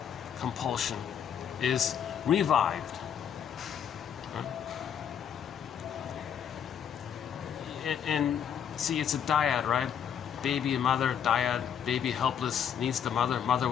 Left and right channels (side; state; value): right; quieter; 8.5 dB